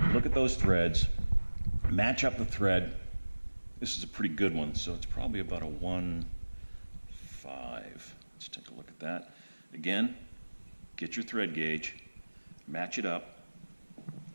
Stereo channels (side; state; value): both; inverted; correlation -1.00